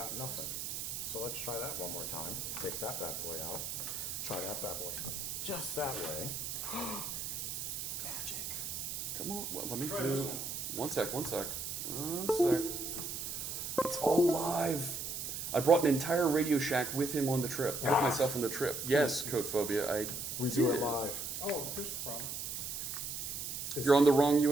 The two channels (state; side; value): noise; right; hiss, 4 dB below the sound